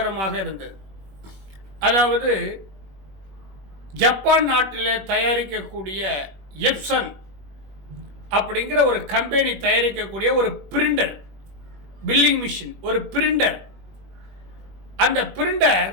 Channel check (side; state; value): left; late; 21 ms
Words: இருந்தது. அதாவது ஜப்பான் நாட்டில் தயாரிக்கக்கூடிய எப்சன் அப்படிங்கிற ஒரு கம்பெனி தயாரிக்கக்கூடிய ஒரு பிரிண்டர், பில்லிங் மிஷின், ஒரு பிரிண்டர். அந்த பிரிண்டர்